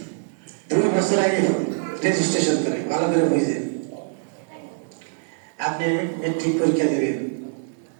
2 বছর আগে রেজিস্ট্রেশন করে ভালো করে বুঝে। আপনি মেট্রিক পরীক্ষা দেবেন,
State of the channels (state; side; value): silent; left; digital silence